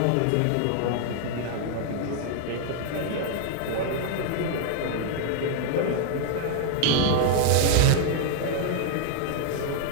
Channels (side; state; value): both; different; correlation -0.01